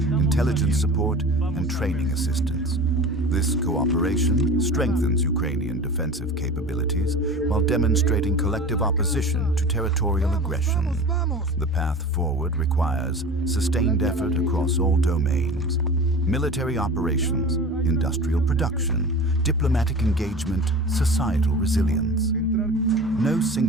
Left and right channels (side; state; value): both; normal; correlation 0.36